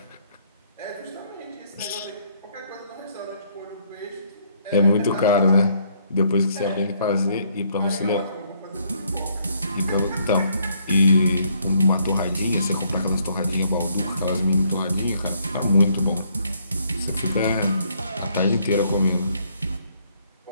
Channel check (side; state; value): both; inverted; correlation -0.68